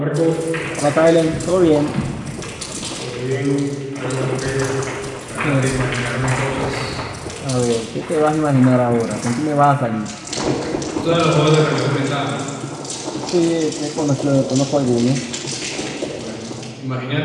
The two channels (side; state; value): both; identical; correlation 1.00